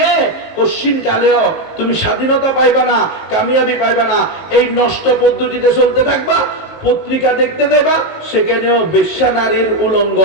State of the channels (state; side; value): late; right; 19 ms